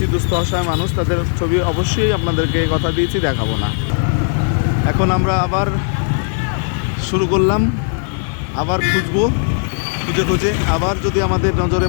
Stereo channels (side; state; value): right; silent; 66 dB below the other